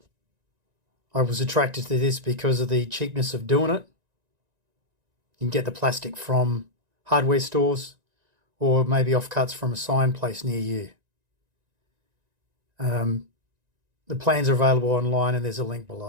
was attracted to this because of the cheapness of doing it. You can get the plastic from hardware stores or maybe offcuts from a sign place near you. The plans are available online and there's a link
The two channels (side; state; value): left; late; 1.9 ms